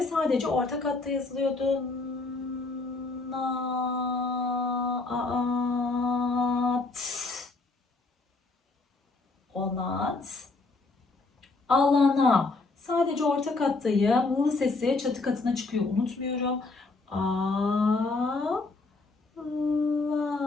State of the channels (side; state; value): right; quieter; 3.6 dB